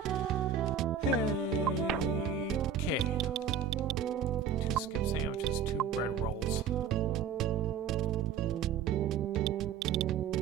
anything. Hey, okay. 2 skip sandwiches, 2 bread rolls.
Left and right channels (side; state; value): left; quieter; 7.4 dB